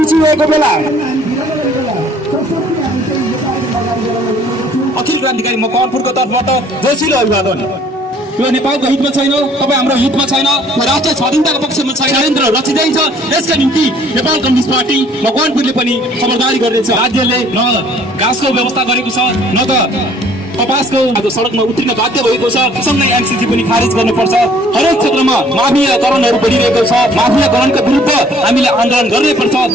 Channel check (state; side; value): normal; both; correlation 0.58